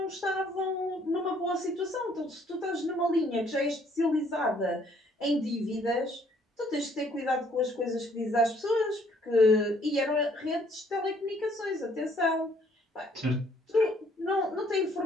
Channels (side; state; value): both; normal; correlation 0.63